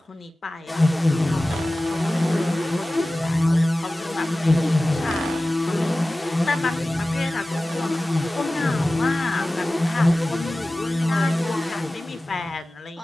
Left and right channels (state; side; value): normal; both; correlation 0.96